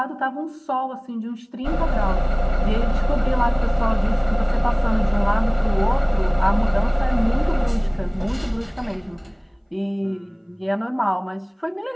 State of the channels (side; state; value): both; identical; correlation 1.00